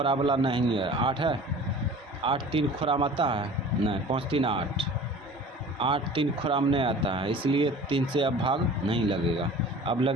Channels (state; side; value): normal; both; correlation 0.43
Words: वाला नहीं है, 8 है, 8 3 खोराम आता है नहीं, 5 3 8, 8 3 खोराम नहीं आता है, इसलिए 3 से अब भाग नहीं लगेगा। अब